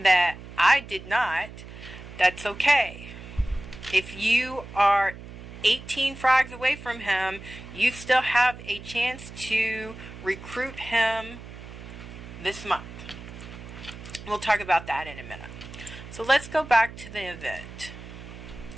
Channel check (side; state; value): right; noise; hum, 14 dB below the sound